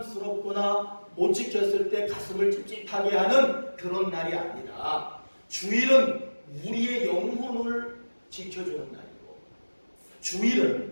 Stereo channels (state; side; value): inverted; both; correlation -1.00